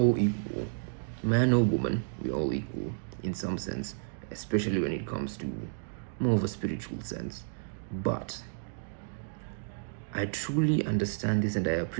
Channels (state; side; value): silent; left; digital silence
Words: equal. Man or woman, we are all equal in some sense, especially when it comes to more of a spiritual sense. But I truly understand this and I